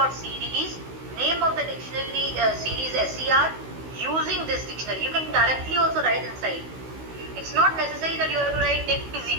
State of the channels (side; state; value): left; late; 16 ms